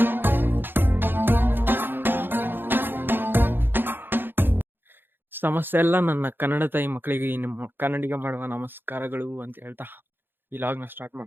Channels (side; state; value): left; late; 0.099 ms